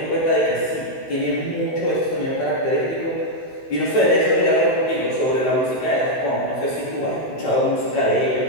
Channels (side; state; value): right; late; 16 ms